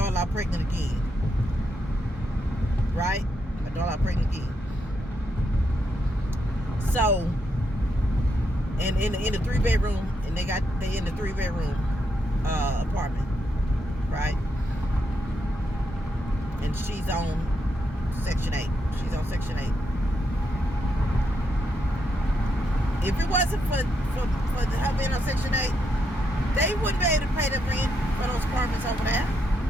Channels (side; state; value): both; normal; correlation 0.80